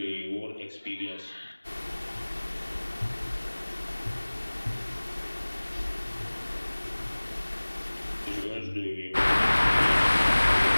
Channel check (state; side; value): inverted; both; correlation -1.00